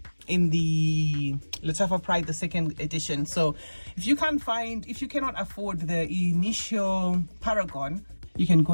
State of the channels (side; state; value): both; inverted; correlation -1.00